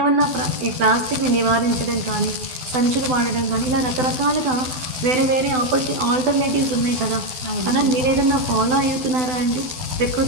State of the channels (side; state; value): left; late; 12 ms